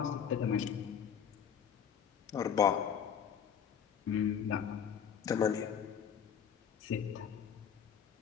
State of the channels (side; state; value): right; quieter; 7.9 dB